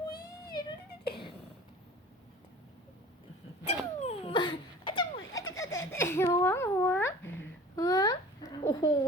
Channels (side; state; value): both; normal; correlation 0.42